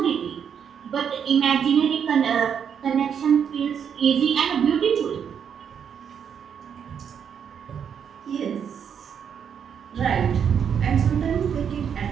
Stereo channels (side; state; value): left; quieter; 7.7 dB